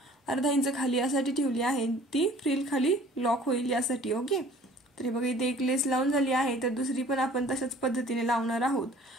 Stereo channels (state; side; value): normal; both; correlation 0.51